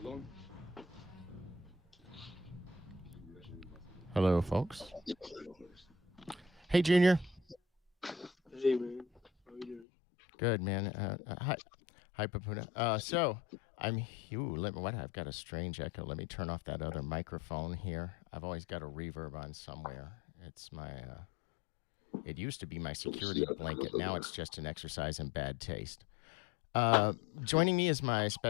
on. Hello, folks. Hey, Junior. Hey, man. How you doing? Good, man. Hi, Papuna. So I'm. I've got a strange echo. Let me turn off that other microphone here. I've always got a reverb on somewhere. It's my. It used to be my security blanket. Now it's just an exercise in bad taste. Joining me is my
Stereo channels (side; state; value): right; drops out; at 9.9 s